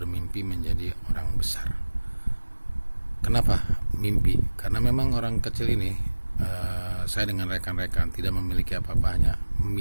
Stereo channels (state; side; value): inverted; both; correlation -1.00